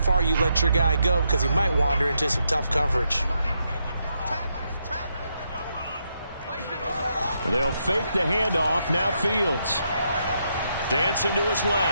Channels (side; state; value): both; inverted; correlation -0.80